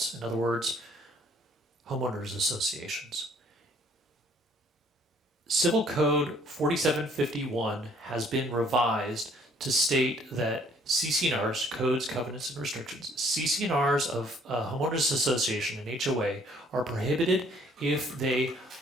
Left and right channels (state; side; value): normal; both; correlation 0.61